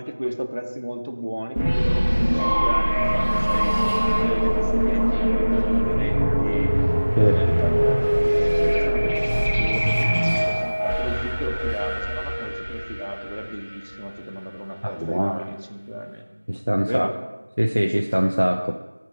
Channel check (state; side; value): inverted; both; correlation -1.00